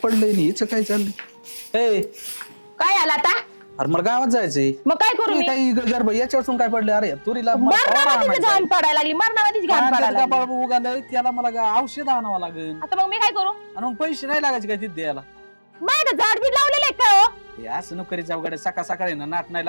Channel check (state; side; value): inverted; both; correlation -1.00